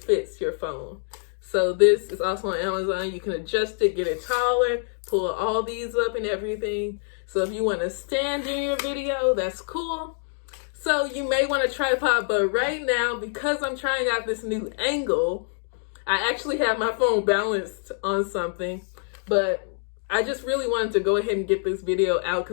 your phone. So this is also on Amazon. You can adjust it, get it taller, pull all these up and everything. So if you want to stand in your video, that's cool. So you may want a tripod, but right now, because I'm trying out this new angle, I actually have my phone balanced on something, but I just really wanted to go ahead and get this video out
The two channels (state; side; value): silent; right; 61 dB below the other